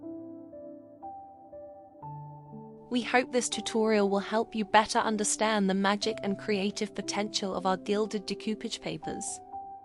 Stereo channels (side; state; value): both; identical; correlation 1.00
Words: We hope this tutorial will help you better understand the magic and creative potential of our gilded decoupage papers.